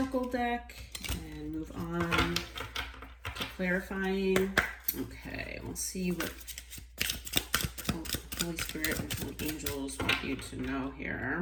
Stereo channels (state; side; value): identical; both; correlation 1.00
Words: deck and move on to clarifying. Okay, we'll see what Holy Spirit and Holy Angels want you to know